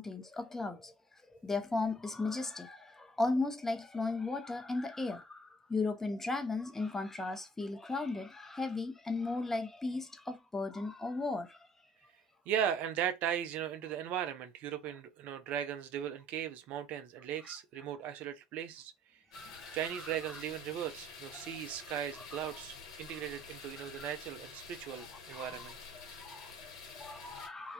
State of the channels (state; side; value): normal; both; correlation 0.61